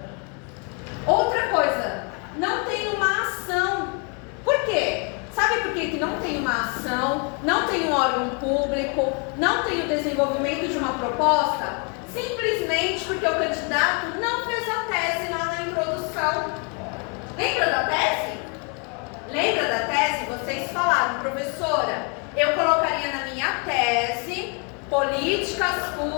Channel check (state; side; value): quieter; right; 36.0 dB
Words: Outra coisa, não tem uma ação. Por quê? Sabe por que não tem uma ação, não tem um órgão público, não tem o desenvolvimento de uma proposta? Simplesmente porque o candidato não fez a tese lá na introdução. Lembra da tese? Lembra da tese? Vocês falaram, professora, eu colocaria na minha tese políticas